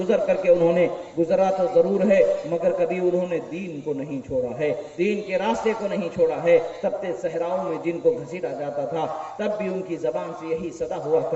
کر کے انہوں نے گزرا تو ضرور ہے، مگر کبھی انہوں نے دین کو نہیں چھوڑا ہے، دین کے راستے کو نہیں چھوڑا ہے۔ تپتے صحراؤں میں جن کو گھسیٹا جاتا تھا تب بھی ان کی زبان سے یہی صدا ہوا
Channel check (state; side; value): identical; both; correlation 1.00